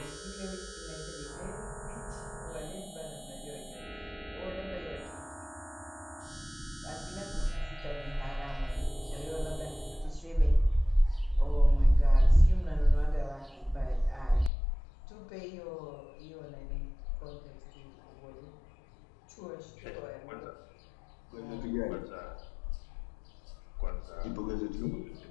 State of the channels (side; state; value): right; drops out; at 14.5 s